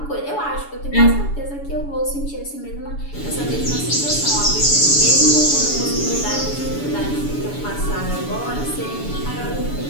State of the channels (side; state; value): right; late; 7.0 ms